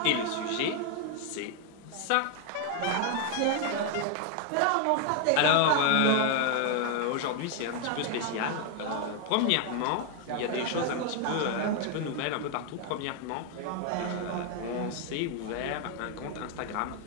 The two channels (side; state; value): both; different; correlation 0.01